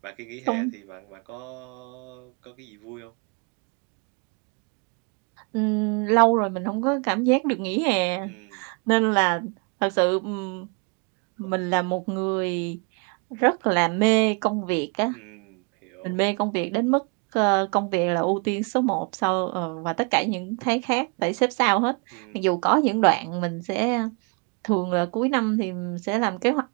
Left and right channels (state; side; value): quieter; left; 34.5 dB